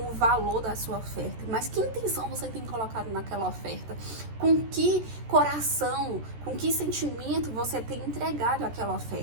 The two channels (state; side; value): late; left; 14 ms